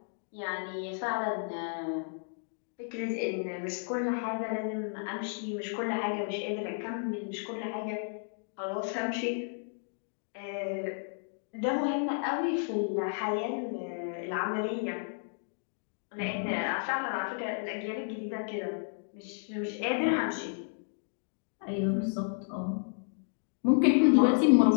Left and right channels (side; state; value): right; silent; digital silence